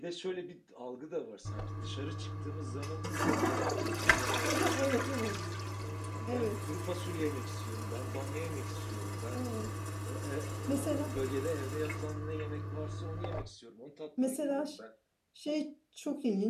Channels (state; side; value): identical; both; correlation 1.00